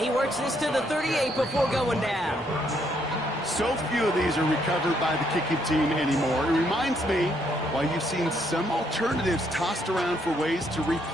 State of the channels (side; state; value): both; normal; correlation 0.72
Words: works this to the 38 before going down. So few of these are recovered by the kicking team anymore. It reminds me why you've seen some alternatives tossed around for ways to